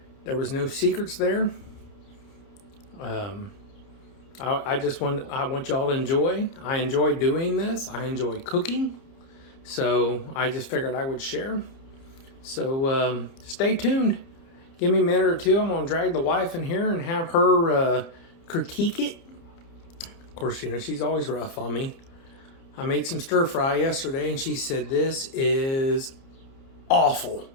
There was no secrets there. I want y'all to enjoy. I enjoy doing this. I enjoy cooking. So I just figured I would share. So stay tuned. Give me a minute or two. I'm going to drag the wife in here and have her critique it. Of course, you know, she's always rough on me. I made some stir fry yesterday and she said, "This is awful."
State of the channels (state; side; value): late; right; 30 ms